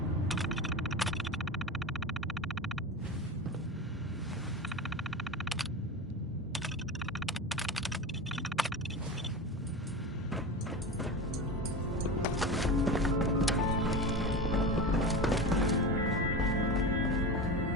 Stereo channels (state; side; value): normal; both; correlation 0.27